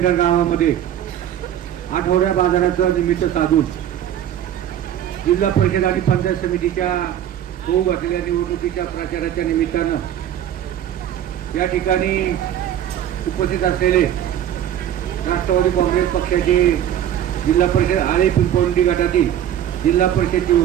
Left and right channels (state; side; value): quieter; left; 10.7 dB